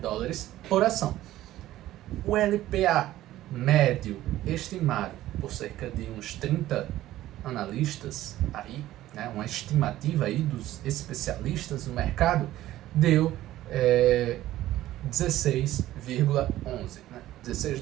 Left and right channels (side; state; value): left; quieter; 14.6 dB